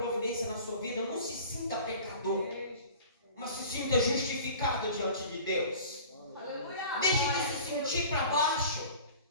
na sua vida. Não se sinta pecador, mas se sinta justificado diante de Deus. Deixe de se sentir para baixo.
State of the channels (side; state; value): both; inverted; correlation -0.42